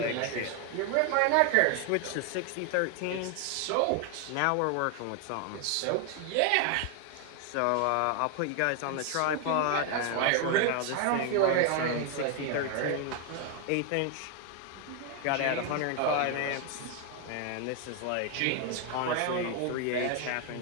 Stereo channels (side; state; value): both; different; correlation 0.01